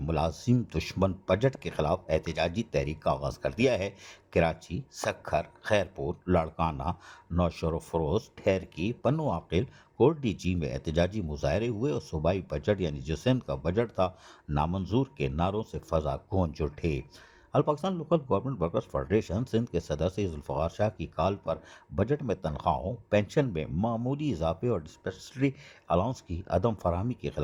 دشمن بجٹ کے خلاف احتجاجی تحریک کا آغاز کر دیا ہے۔ کراچی، سکھر، خیرپور، لاڑکانہ، نوشہر و فروز، ٹھیرکی، پنو عاقل، کوٹ ڈی جی میں احتجاجی مظاہرے ہوئے اور صوبائی بجٹ یعنی جو سندھ کا بجٹ تھا نامنظور کے نعروں سے فضا گونج اٹھے۔ All Pakistan local government workers federation Sindh کے صدر سید ذوالفقار شاہ کی کال پر بجٹ میں تنخواہوں، پینشن میں معمولی اضافے اور ڈسپینسری الاؤنس کی عدم فراہمی کے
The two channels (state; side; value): identical; both; correlation 1.00